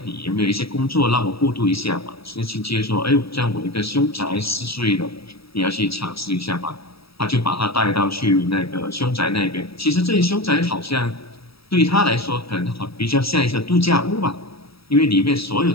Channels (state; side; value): late; right; 0.77 ms